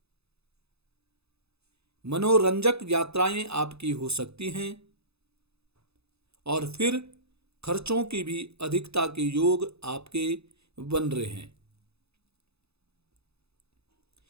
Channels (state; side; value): late; left; 0.79 ms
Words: मनोरंजक यात्राएं आपकी हो सकती हैं और फिर खर्चों की भी अधिकता के योग आपके बन रहे हैं।